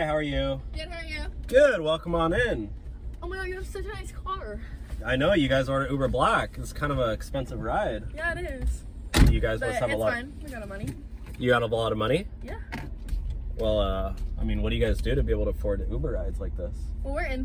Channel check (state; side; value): identical; both; correlation 1.00